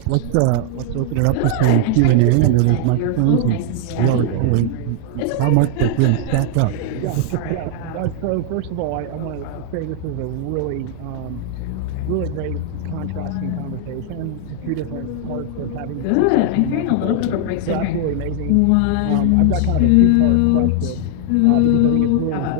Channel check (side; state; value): both; different; correlation 0.00